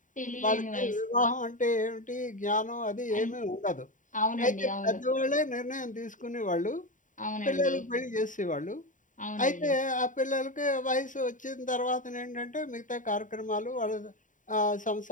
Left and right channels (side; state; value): right; late; 0.37 ms